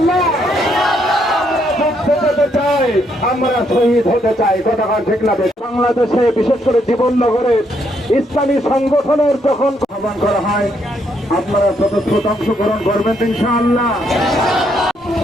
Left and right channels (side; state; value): both; normal; correlation 0.73